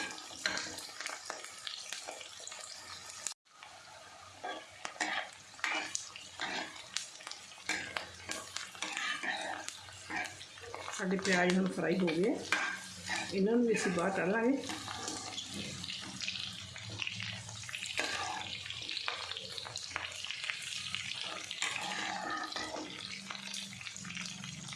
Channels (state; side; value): identical; both; correlation 1.00